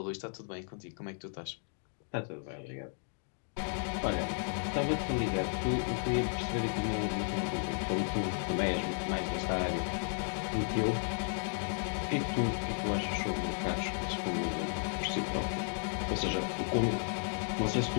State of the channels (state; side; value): silent; right; 55 dB below the other